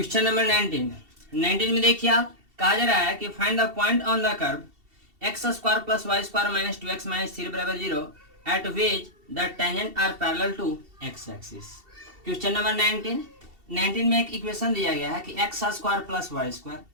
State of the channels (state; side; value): late; left; 2.7 ms